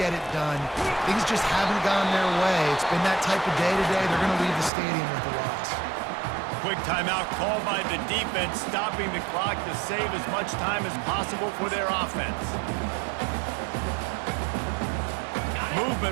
it done. Things just haven't gone their way. It's been that type of day today. They're going to leave the stadium with a loss. Quick timeout called by the defense, stopping the clock to save as much time as possible for their offense. Movement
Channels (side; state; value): left; drops out; at 4.7 s